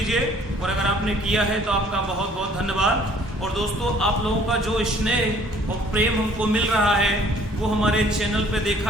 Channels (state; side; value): normal; both; correlation 0.57